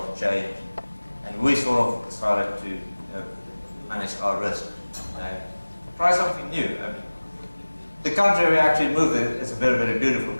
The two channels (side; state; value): both; inverted; correlation -1.00